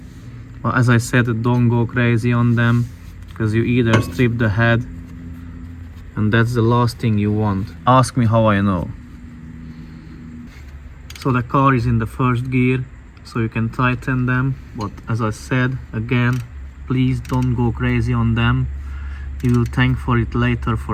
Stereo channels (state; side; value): identical; both; correlation 1.00